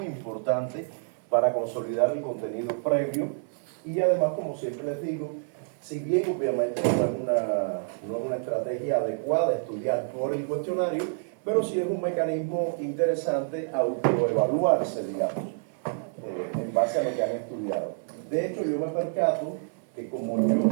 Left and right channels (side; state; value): left; silent; 59 dB below the other